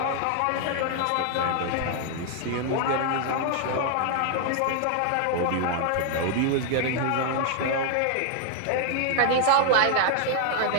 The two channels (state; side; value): different; both; correlation 0.00